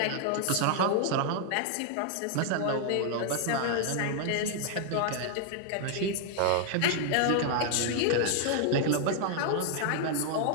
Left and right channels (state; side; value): different; both; correlation 0.00